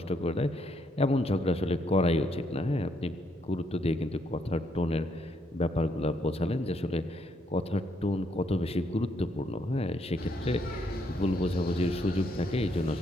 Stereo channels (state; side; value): normal; both; correlation 0.73